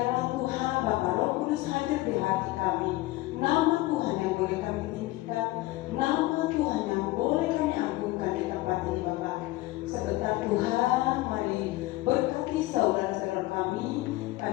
Tuhan Bapa Roh Kudus hadir di hati kami. Nama Tuhan yang boleh kami tinggikan, nama Tuhan yang boleh kami agungkan di tempat ini Bapa. Sebentar Tuhan, mari berkati saudara-saudara kami.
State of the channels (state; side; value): quieter; right; 18.9 dB